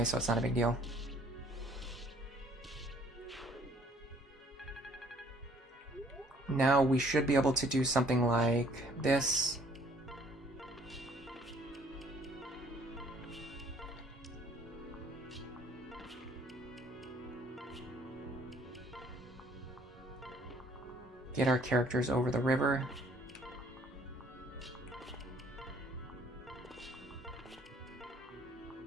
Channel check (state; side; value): normal; both; correlation 0.60